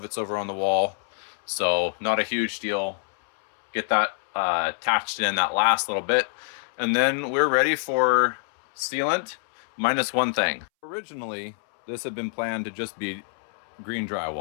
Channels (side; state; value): right; silent; 61 dB below the other